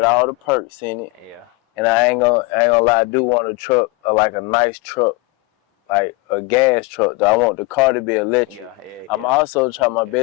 all the perks in it. Yeah. And I ain't gonna lie, I do want a truck, like a nice truck, like a gas truck. Though I want the car to be electric. Yeah. I'm also trying my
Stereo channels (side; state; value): right; quieter; 24.8 dB